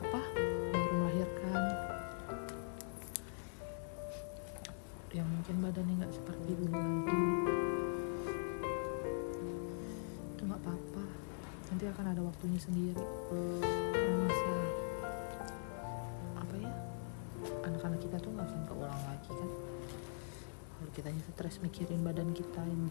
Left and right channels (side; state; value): right; silent; digital silence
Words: baru melahirkan, yang mungkin badannya nggak seperti dulu lagi, itu nggak apa-apa, nanti akan ada waktunya sendiri. Masa anak-anak kita tuh nggak akan keulang lagi kan. Kalau kita stres mikirin badan kita yang